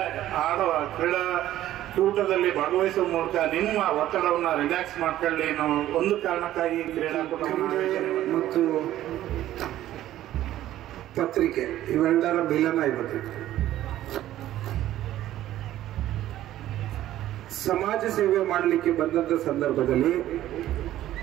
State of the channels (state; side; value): quieter; left; 13.5 dB